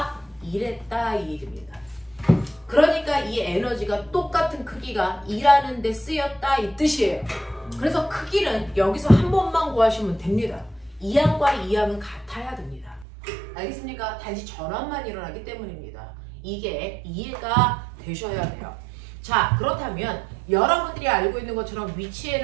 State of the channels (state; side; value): drops out; left; at 13.1 s